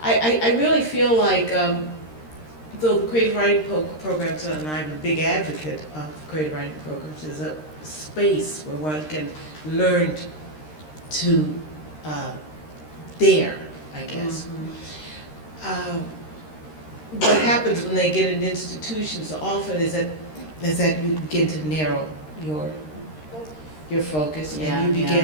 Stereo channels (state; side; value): late; right; 13 ms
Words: I really feel like, though the creative writing programs, and I'm a big advocate of creative writing programs, is a space where one can learn to dare, I guess. What happens when they get in institutions often is that you begin to narrow your focus, and you